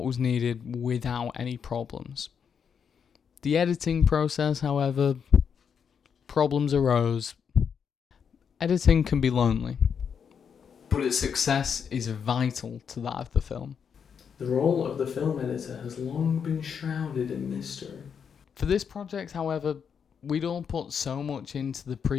was needed without any problems. The editing process, however, problems arose. Editing can be lonely, but its success is vital to that of the film. The role of the film editor has long been shrouded in mystery. For this project, however, we'd all put so much into the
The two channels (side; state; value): right; quieter; 7.0 dB